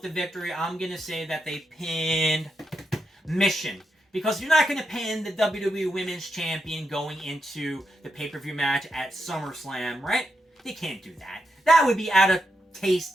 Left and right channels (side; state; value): both; normal; correlation 0.84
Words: the victory. I'm going to say that they pinned Michonne. Because you're not going to pin the WWE Women's Champion going into the pay-per-view match at SummerSlam, right? They can't do that. That would be out of taste